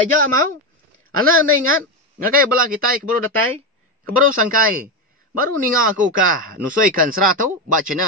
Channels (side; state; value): both; normal; correlation 0.12